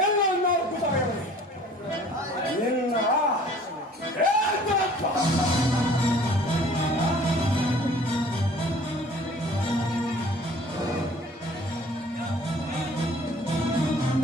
ಎಲ್ಲ ನಾಲ್ಕು ತಲೆಯವನಿಗೆ ನಿನ್ನ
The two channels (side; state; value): both; normal; correlation 0.51